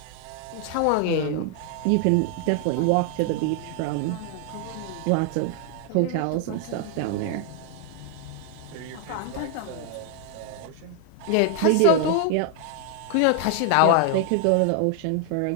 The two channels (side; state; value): both; different; correlation 0.00